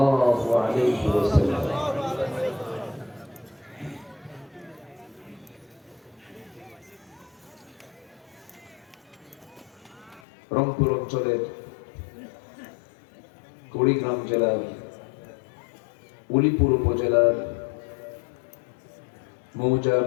আলাইহি ওয়াসাল্লাম রংপুর অঞ্চলের কুড়িগ্রাম জেলার উলিপুর উপজেলার মৌজা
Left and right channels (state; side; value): drops out; right; at 10.2 s